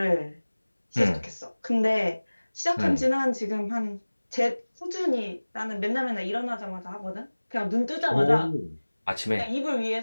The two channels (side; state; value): both; inverted; correlation -1.00